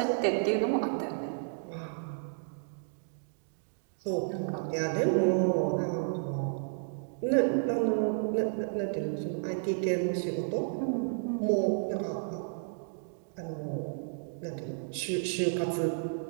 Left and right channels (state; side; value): silent; left; digital silence